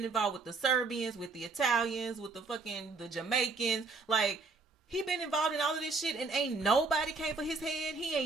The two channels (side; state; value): left; quieter; 4.1 dB